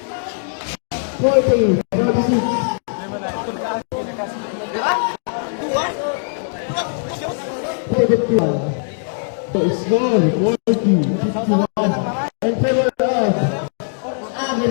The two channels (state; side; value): silent; right; 63 dB below the other